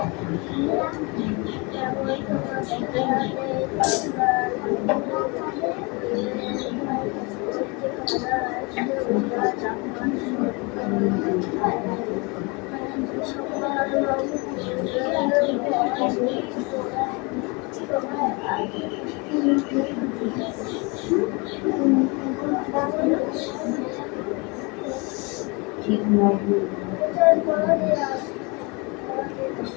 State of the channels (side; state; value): right; quieter; 29.0 dB